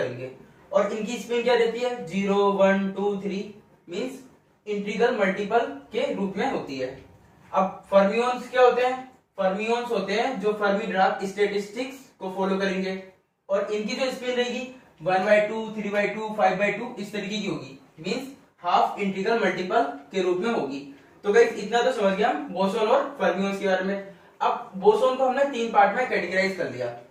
और इनकी स्पिन क्या रहती है, 0 1 2 3 मींस इंटीग्रल मल्टीपल के रूप में होती है। अब फर्मियोन्स क्या होते हैं? फर्मियोन्स होते हैं जो फर्मी-डिराक स्टैटिस्टिक्स को फॉलो करेंगे और इनकी जो स्पिन रहेगी 1/2 3/2 5/2 इस तरीके की होगी, मींस हाफ इंटीग्रल मल्टीपल के रूप में होगी। तो गाइस इतना तो समझ गया हम बोसोन और फर्मियोन्स के बारे में। अब बोसोन को हमने तीन पार्ट में कैटेगराइज कर दिया।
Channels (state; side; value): identical; both; correlation 1.00